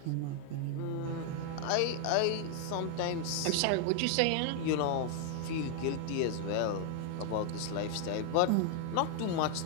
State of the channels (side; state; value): both; different; correlation 0.00